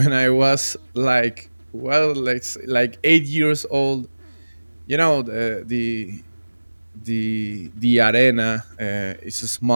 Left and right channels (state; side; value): inverted; both; correlation -1.00